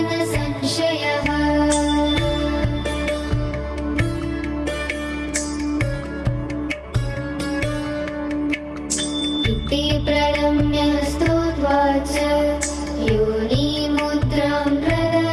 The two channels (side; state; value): both; identical; correlation 1.00